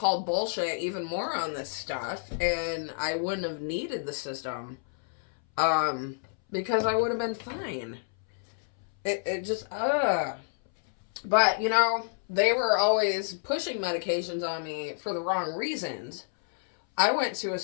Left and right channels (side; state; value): right; silent; 59 dB below the other